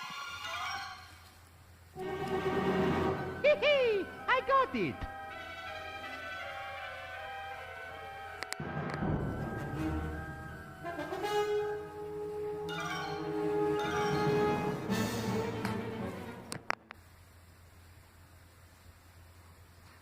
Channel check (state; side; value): identical; both; correlation 1.00